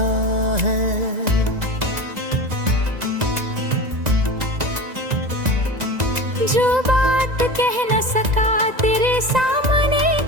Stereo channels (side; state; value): left; late; 1.9 ms